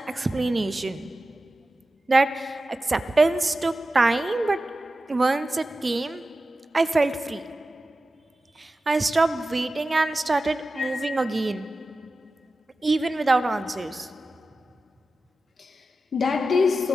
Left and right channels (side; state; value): both; normal; correlation 0.94